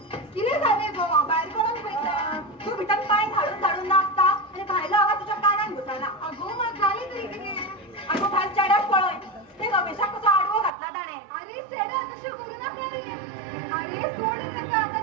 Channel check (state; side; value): drops out; left; at 10.7 s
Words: कितें जालें गो भायर कोणाक पळयता तू भितर पांय धाडून धाडून नाचता आनी भायलो आवाज तुज्या कानान घुसना अगो म्हाका जालें तरी कितें अगो भायर चेड्याक पळय ते रमेशाक कसो आडवो घातला ताणें अरे चेड्या तशें करूं नाका रे अरे सोड ताका